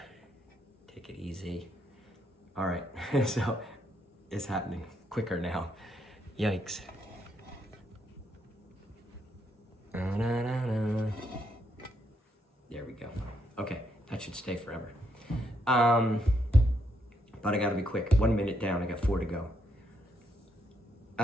Take it easy. All right, so it's happening quicker now. Yikes. There we go. Okay, that should stay forever. But I gotta be quick. 1 minute down, I got 4 to go.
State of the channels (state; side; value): normal; both; correlation 0.76